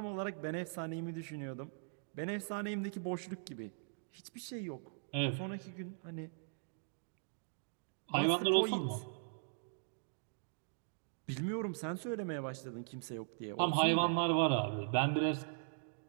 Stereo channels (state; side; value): silent; left; digital silence